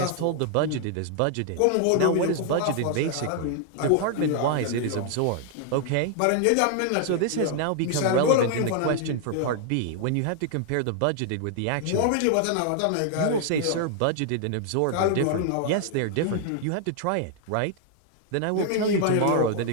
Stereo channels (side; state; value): both; different; correlation 0.00